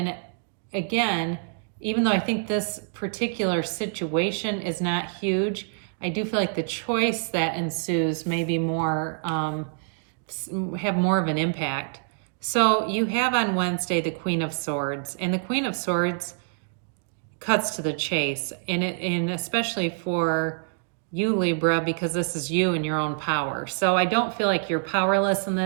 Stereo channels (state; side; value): silent; left; 61 dB below the other